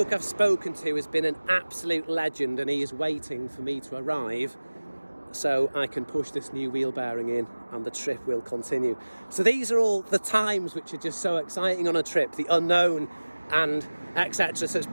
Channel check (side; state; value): both; inverted; correlation -1.00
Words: I've spoken to has been an absolute legend, and he is waiting for me to arrive so I can push this new wheel bearing in and the trip will continue. So these are all the times which are just so exciting on a trip, the unknown and etc. So it's